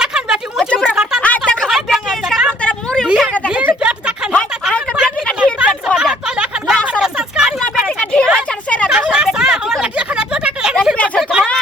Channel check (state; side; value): normal; both; correlation 0.61